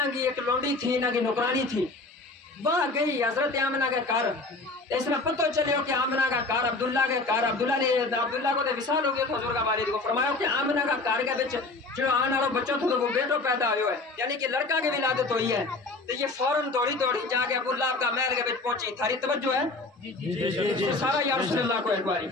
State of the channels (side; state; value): right; quieter; 3.3 dB